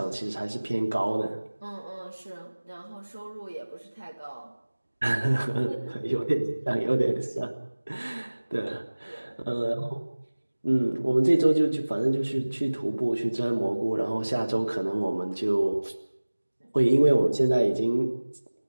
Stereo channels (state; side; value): inverted; both; correlation -1.00